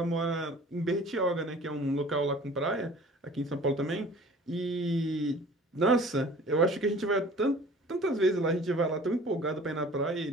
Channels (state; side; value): normal; both; correlation 0.47